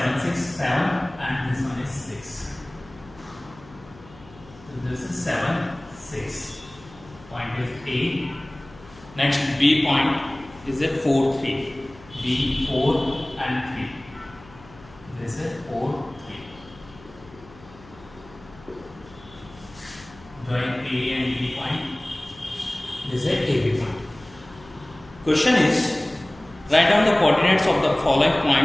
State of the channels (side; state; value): left; noise; hum, 22 dB below the sound